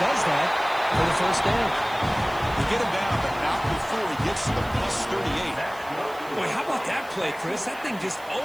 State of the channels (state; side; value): noise; right; hiss, 22 dB below the sound